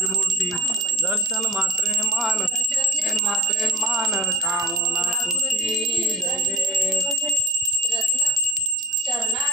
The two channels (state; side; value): normal; both; correlation 0.41